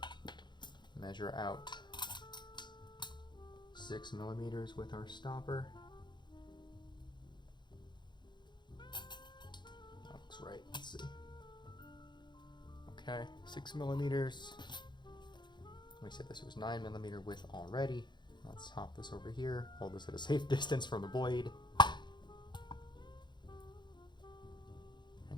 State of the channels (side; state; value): right; late; 0.22 ms